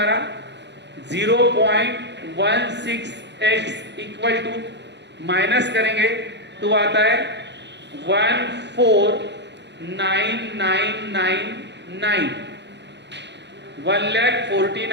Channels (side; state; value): left; late; 0.51 ms